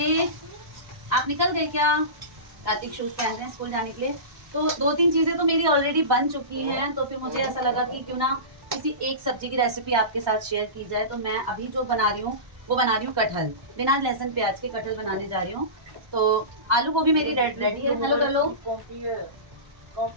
आप निकल गए क्या? कार्तिक शूज पहन रहे हैं स्कूल जाने के लिए। तो 2-3 चीजें तो मेरी ऑलरेडी बन चुकी हैं, तो फिर मुझे ऐसा लगा कि क्यों ना किसी एक सब्जी की रेसिपी आपके साथ शेयर की जाए। तो मैं अभी जो बना रही हूँ वो बना रही हूँ कटहल, बिना लहसुन प्याज के कटहल बनाने जा रही हूँ। तो आलू गोभी मेरी रेडी है। हेलो कर लो।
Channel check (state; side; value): late; left; 1.2 ms